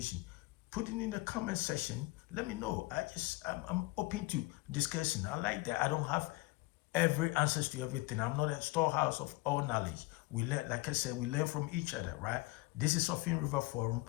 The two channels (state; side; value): quieter; right; 21.3 dB